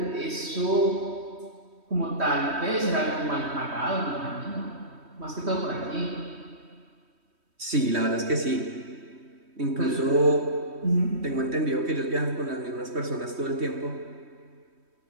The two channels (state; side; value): late; left; 3.1 ms